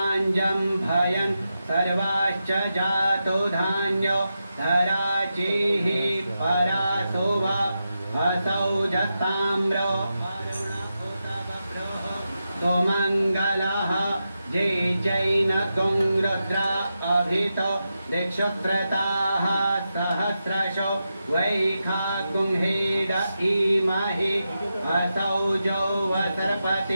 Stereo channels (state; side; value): inverted; both; correlation -0.88